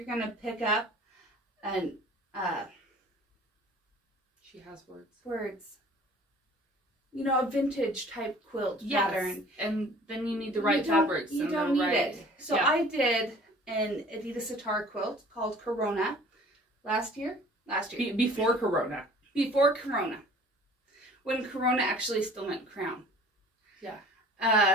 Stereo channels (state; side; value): normal; both; correlation 0.49